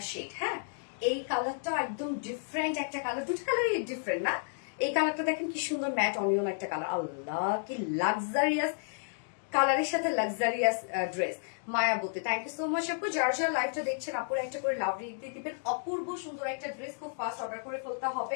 শেড। হ্যাঁ, এই কালারটা একদম ডিফারেন্ট একটা কালার, দুটো কালারই ডিফারেন্ট না? এই কালারটা দেখেন কি সুন্দর ম্যাট অনিয়ন একটা কালার। আল্লাহ কি লাক্সারিয়াস কালারের সাথে লাক্সারিয়াস ড্রেস। মায়াবতী থ্যাংক ইউ সো মাচ আপু। যার যার লাইভটা দেখছেন আপুর একটা করে লাভ দিয়ে দিবেন। অপূর্ব সুন্দর একটা ড্রেস খুব ফাস্ট অর্ডার করে ফেলতে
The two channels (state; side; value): silent; right; digital silence